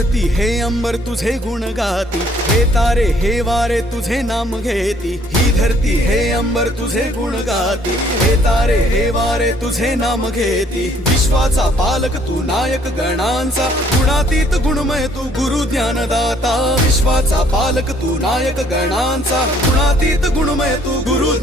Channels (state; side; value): normal; both; correlation 0.62